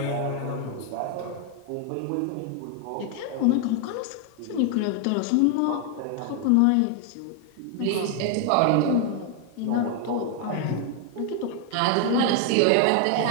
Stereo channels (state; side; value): different; both; correlation 0.00